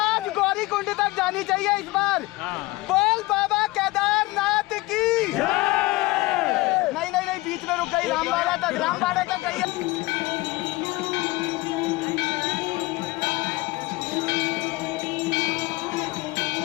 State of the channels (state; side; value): quieter; right; 21.1 dB